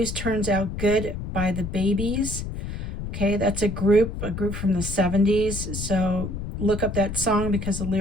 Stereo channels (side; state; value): left; noise; rumble, 6 dB below the sound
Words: turns out good by the Babies. Okay, that's a group from the 70s. So look up that song because the